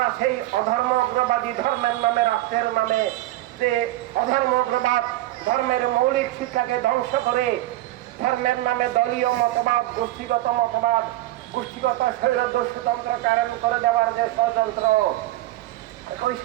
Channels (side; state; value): left; quieter; 16.4 dB